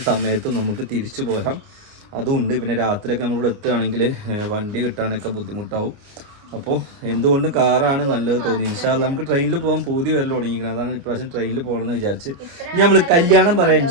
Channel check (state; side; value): late; left; 29 ms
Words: സമയത്തും നമുക്ക് തിരിച്ചു പോരാം, അതുമുണ്ട്. പിന്നെ രാത്രിയൊക്കെ നമ്മളിവിടെ എത്തുകയാണെങ്കിൽ വണ്ടി കിട്ടാനൊക്കെ ബുദ്ധിമുട്ടാവും. അപ്പോൾ എന്തുകൊണ്ട് കാറാണ് നല്ലത് തോന്നി. ഇൻഷാ അല്ലാഹ് നമുക്ക് ട്രെയിനിൽ പോകാൻ പൂതി വരൽ തുടങ്ങിയിരിക്കുന്നത്. അതാണ് ഇപ്രാവശ്യം ട്രെയിനിൽ പോകണമെന്ന് വിചാരിച്ച്. ഇനി നമ്മൾ കല്യാണം പറയാം,